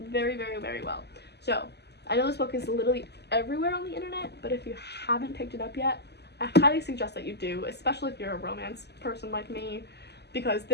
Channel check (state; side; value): late; right; 0.49 ms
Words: very, very, very well. So I know this book is literally everywhere on the internet, but if you haven't picked it up yet, I highly suggest that you do, especially if you're a romance person like me, because